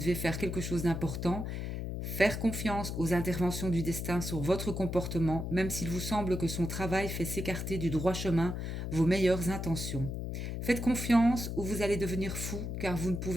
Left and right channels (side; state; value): left; noise; hum, 4 dB below the sound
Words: faire quelque chose d'important, faire confiance aux interventions du destin sur votre comportement, même s'il vous semble que son travail fait s'écarter du droit chemin vos meilleures intentions. Faites confiance ou vous allez devenir fou car vous ne